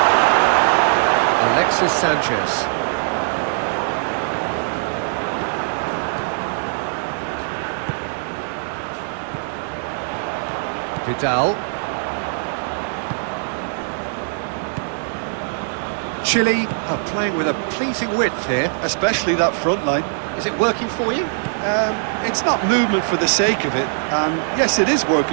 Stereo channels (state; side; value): silent; left; digital silence